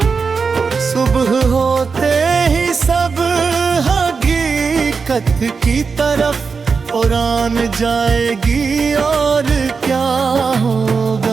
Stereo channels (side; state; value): left; quieter; 5.1 dB